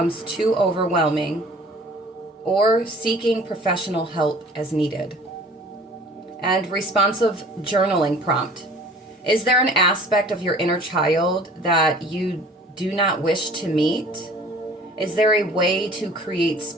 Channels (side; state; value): both; normal; correlation 0.48